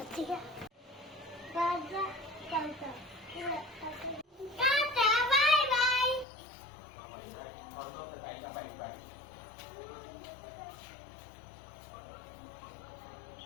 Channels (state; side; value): drops out; right; at 6.2 s